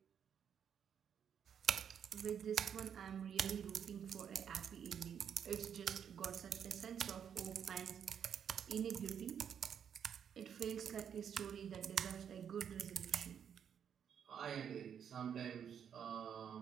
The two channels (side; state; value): left; quieter; 8.1 dB